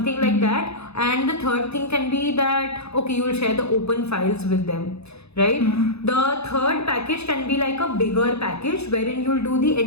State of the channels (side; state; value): right; late; 0.79 ms